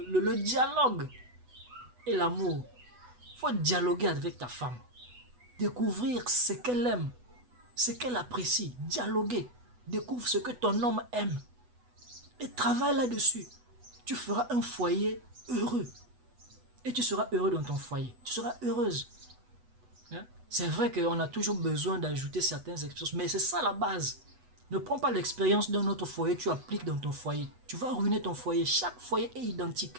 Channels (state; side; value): late; left; 8.1 ms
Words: dialogue et l'amour. Il faut dialoguer avec ta femme. Découvrir ce qu'elle aime, ce qu'elle apprécie. Dialoguer. Découvre ce que ton homme aime. Et travaille là-dessus. Tu feras un foyer heureux. Et tu seras heureux dans ton foyer. Tu seras heureuse. Hein? C'est vrai qu'on a toujours besoin d'ajouter certaines expériences, mais c'est ça la base. Ne prends pas l'expérience d'un autre foyer, tu appliques dans ton foyer. Tu vas ruiner ton foyer. Chaque foyer est